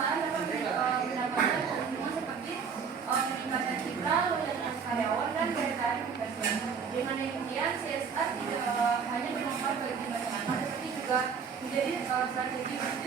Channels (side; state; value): left; quieter; 6.3 dB